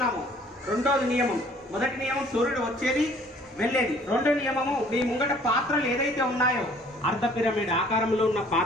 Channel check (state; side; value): normal; both; correlation 0.56